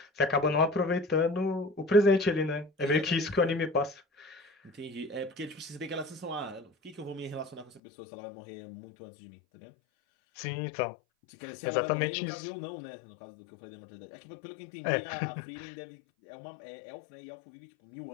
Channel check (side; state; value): right; drops out; at 7.8 s